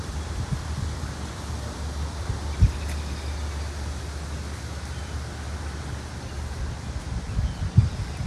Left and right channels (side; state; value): both; identical; correlation 1.00